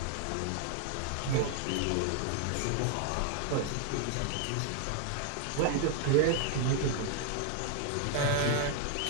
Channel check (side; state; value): both; different; correlation 0.00